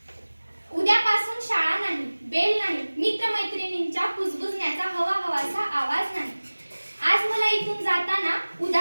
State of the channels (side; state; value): both; inverted; correlation -1.00